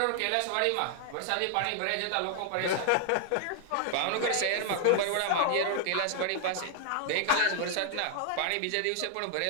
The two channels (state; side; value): different; both; correlation -0.01